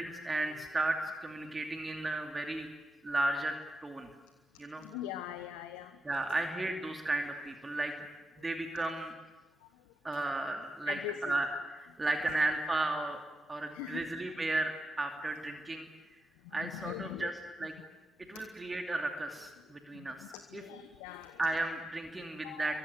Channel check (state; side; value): normal; both; correlation 0.88